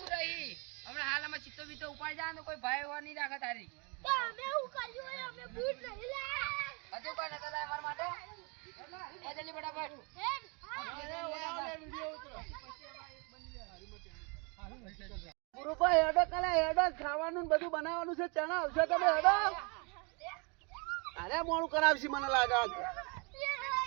રહી હમણાં હાલ અમે ચિત્તો બીતો ઉપાડી જાય તો કોઈ ભાઈ હોવા નહીં રાખે તારી. હજુ કોઈ નતા લાય મારા માટે. જલ્દી ફટાફટ. ગુરુભાઈ હેડો કાલે હેડો ખાવાનું ને બધું બનાવવાનું છે. ચણા આવશે તમે હેડો. અરે મોડું કરાવશે મને લાગે.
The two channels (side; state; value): left; quieter; 32.0 dB